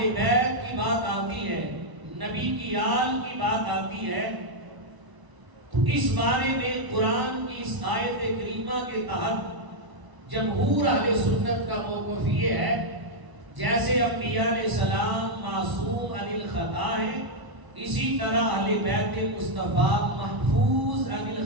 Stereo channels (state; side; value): late; left; 1.0 ms